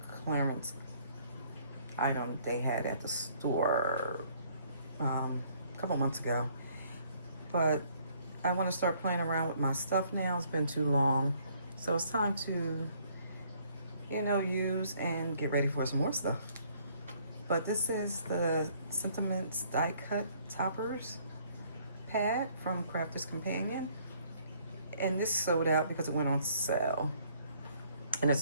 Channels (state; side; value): inverted; both; correlation -0.63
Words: clearance item they had at the store a couple months ago. But I want to start playing around with my stuff now. It's been too long. So it's time to, use and get ready for some more stuff. But this is the Sentiments Die Cut Toppers pad from Crafter's Companion. And this sold out because it went on sale. And it